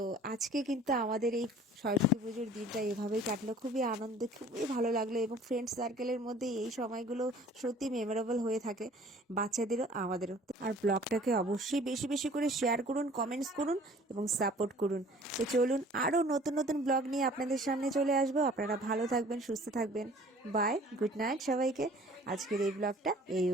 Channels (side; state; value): both; normal; correlation 0.50